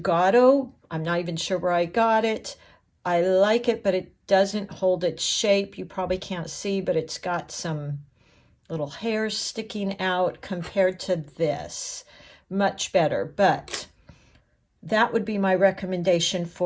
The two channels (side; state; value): both; identical; correlation 1.00